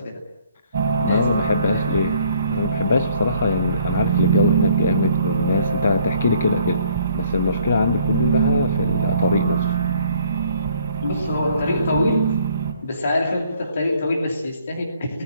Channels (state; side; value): inverted; both; correlation -0.61